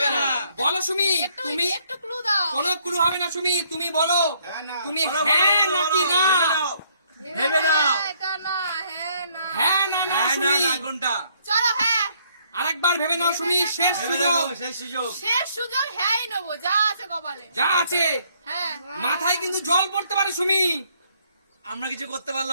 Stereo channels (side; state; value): both; inverted; correlation -0.67